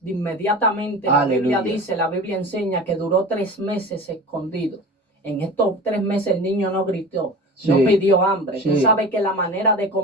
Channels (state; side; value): normal; both; correlation 0.35